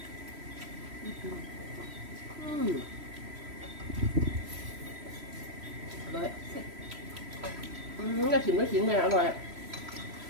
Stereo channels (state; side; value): late; left; 3.1 ms